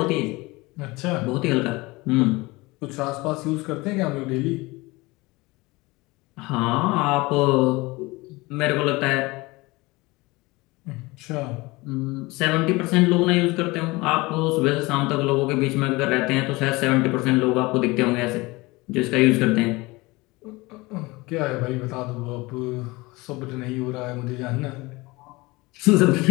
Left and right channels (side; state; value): right; quieter; 22.7 dB